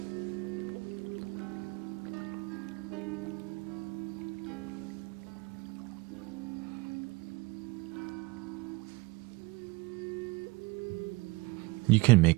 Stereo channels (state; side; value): quieter; left; 24.1 dB